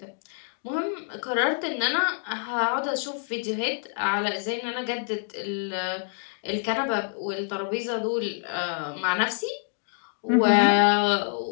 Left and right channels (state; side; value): silent; right; digital silence